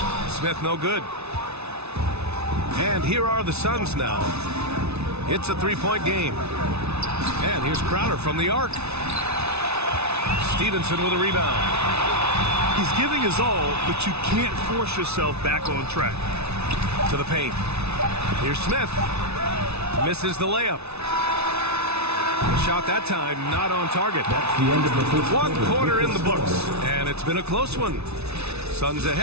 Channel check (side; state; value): left; late; 0.80 ms